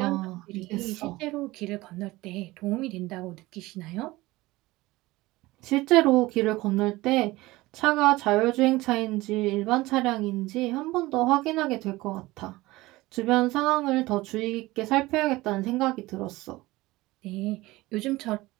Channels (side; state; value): left; quieter; 19.5 dB